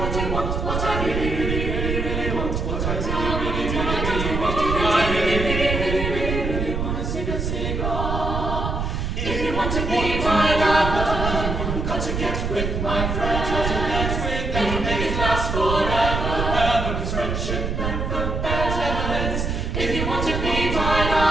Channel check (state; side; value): noise; right; rumble, 2 dB below the sound